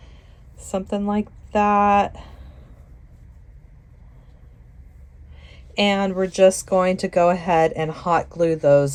Something like that. And we're just going to go ahead and hot glue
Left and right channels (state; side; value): identical; both; correlation 1.00